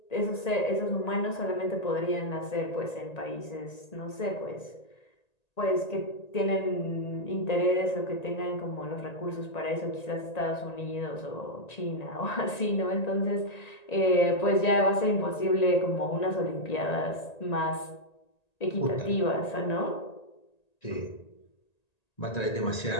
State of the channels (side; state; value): right; late; 1.9 ms